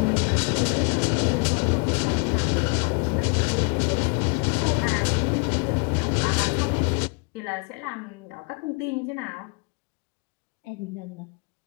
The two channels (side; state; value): right; quieter; 34.4 dB